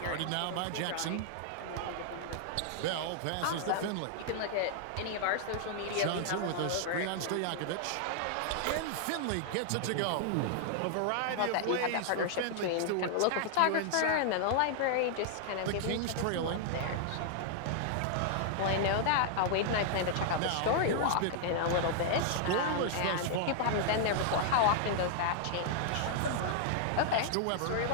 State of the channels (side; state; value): both; different; correlation -0.01